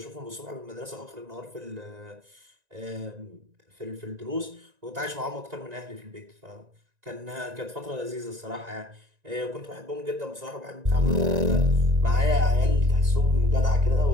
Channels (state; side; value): late; left; 1.9 ms